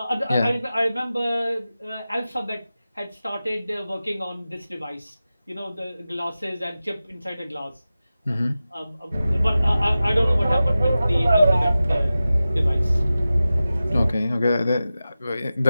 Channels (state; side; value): inverted; both; correlation -0.94